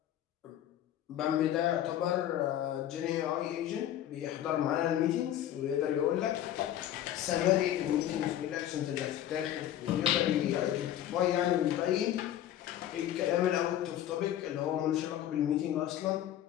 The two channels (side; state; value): right; quieter; 11.8 dB